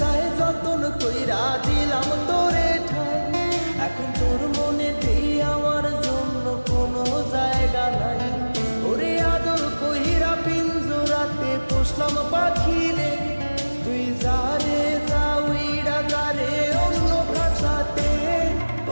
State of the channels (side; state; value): both; inverted; correlation -1.00